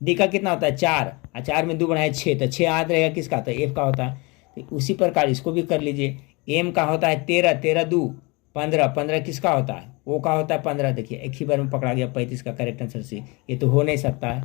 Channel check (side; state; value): right; quieter; 27.1 dB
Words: डी का कितना होता है 4, और 4 में 2 बढ़ाए 6, तो 6 याद रहेगा किसका होता है एफ का होता है। तो उसी प्रकार इसको भी कर लीजिए। एम का होता है 13, 13 2 15, 15 किसका होता है ओ का होता है 15, देखिए एक ही बार में पकड़ा गया 35 का करेक्ट आंसर सी, ये तो हो नहीं सकता है।